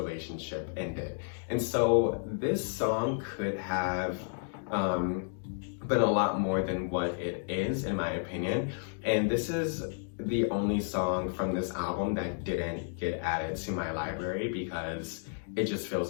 ended. And so this song could have been a lot more than what it is, in my opinion. And this is the only song from this album that didn't get added to my library because it just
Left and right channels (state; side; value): silent; right; digital silence